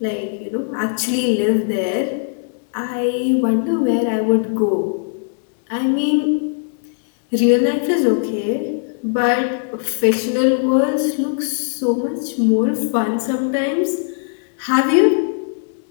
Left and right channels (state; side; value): silent; right; digital silence